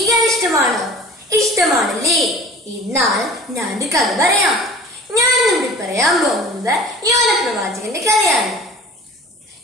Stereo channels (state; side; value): normal; both; correlation 0.43